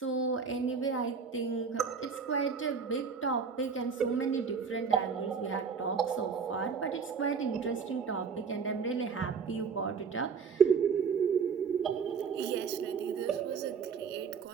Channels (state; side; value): quieter; left; 5.9 dB